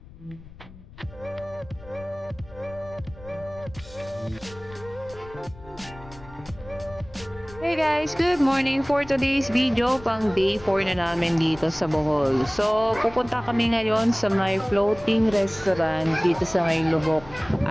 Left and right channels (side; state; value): left; noise; rumble, 19 dB below the sound